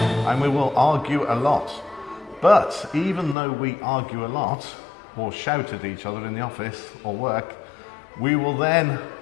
and we will argue a lot. But even though we argue a lot or shout at each other in the office or work, we will then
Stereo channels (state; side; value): drops out; right; at 3.4 s